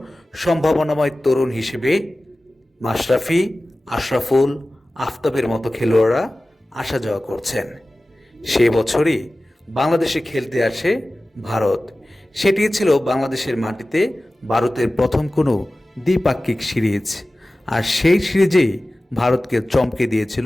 সম্ভাবনাময় তরুণ হিসেবে মাশরাফি, আশরাফুল, আফতাবের মতো খেলোয়াড়রা আসা যাওয়া করছেন। সে বছরই বাংলাদেশে খেলতে আসে ভারত। সেটি ছিল বাংলাদেশের মাটিতে ভারতের প্রথম কোনো দ্বিপাক্ষিক সিরিজ, আর সেই সিরিজেই ভারতকে চমকে দিয়েছিল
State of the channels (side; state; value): both; normal; correlation 0.96